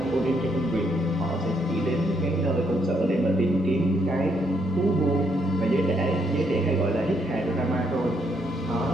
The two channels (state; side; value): normal; both; correlation 0.74